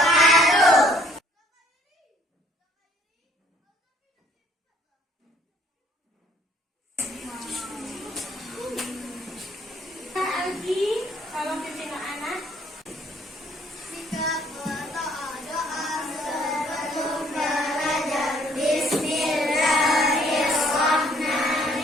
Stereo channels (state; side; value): normal; both; correlation 0.62